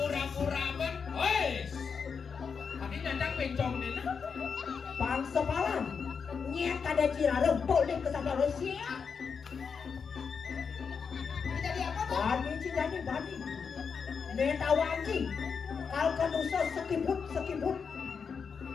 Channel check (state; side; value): quieter; right; 5.9 dB